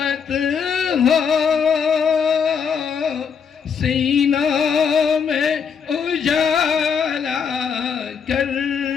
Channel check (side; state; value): right; quieter; 6.6 dB